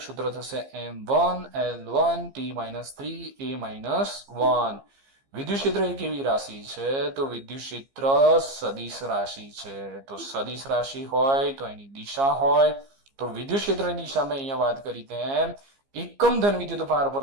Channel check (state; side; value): late; left; 15 ms